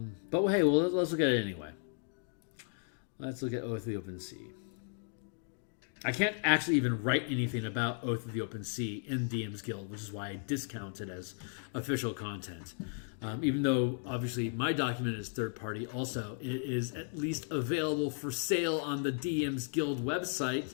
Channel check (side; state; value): right; silent; 54 dB below the other